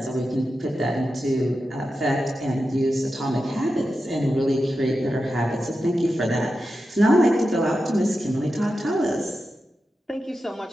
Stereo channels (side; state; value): both; normal; correlation 0.91